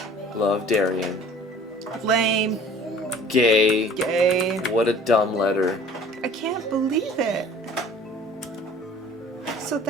Love, Darian. Lame. Gay. Gay. What a dumb letter. I can't believe it. So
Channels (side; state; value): both; normal; correlation 0.49